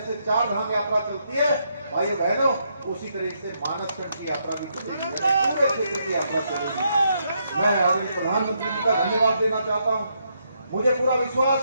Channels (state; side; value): inverted; both; correlation -0.77